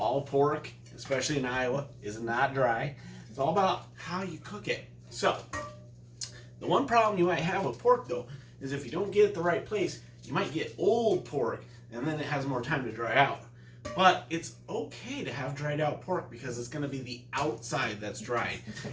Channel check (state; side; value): identical; both; correlation 1.00